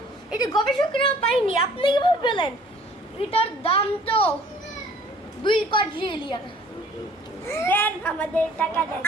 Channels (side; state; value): both; normal; correlation 0.55